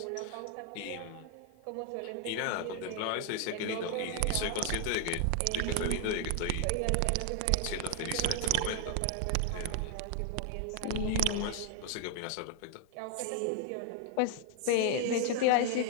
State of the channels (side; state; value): both; different; correlation 0.00